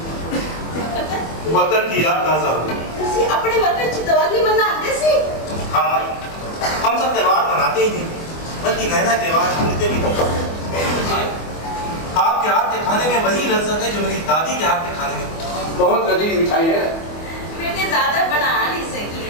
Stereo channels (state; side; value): late; right; 24 ms